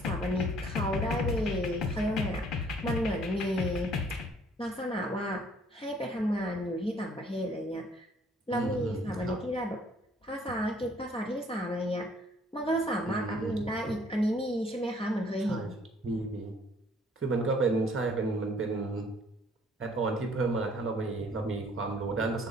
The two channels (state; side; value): normal; both; correlation 0.60